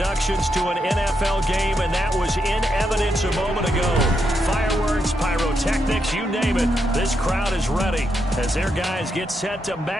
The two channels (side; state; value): both; normal; correlation 0.82